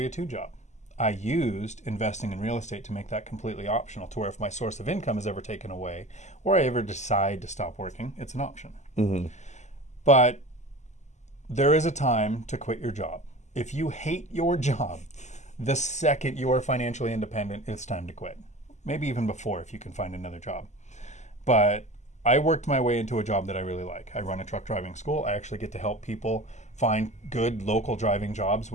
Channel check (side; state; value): right; late; 0.34 ms